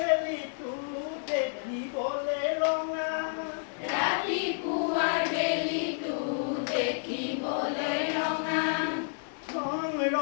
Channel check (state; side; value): silent; right; digital silence